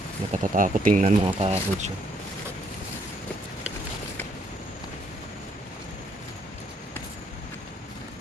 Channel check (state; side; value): normal; both; correlation 0.70